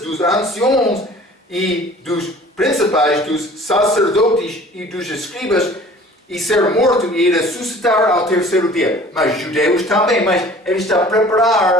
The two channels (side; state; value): both; normal; correlation 0.48